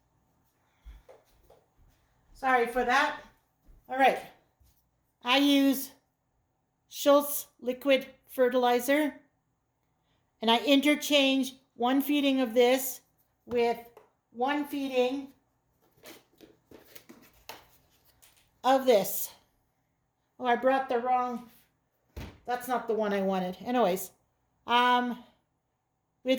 Sorry for that. All right. I use Schultz liquid fertilizer, and I interchange 1 feeding of this with 1 feeding of this. Oh, I brought the wrong, that's not the one I wanted. Anyways,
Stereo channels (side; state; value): both; identical; correlation 1.00